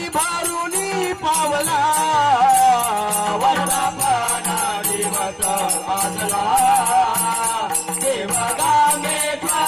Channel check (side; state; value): both; identical; correlation 1.00